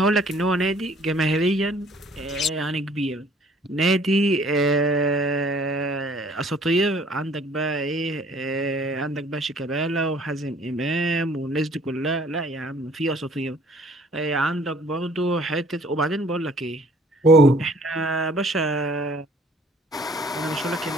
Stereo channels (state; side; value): normal; both; correlation 0.57